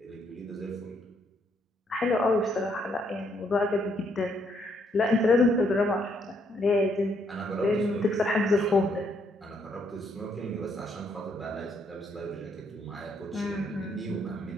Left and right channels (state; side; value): normal; both; correlation 0.72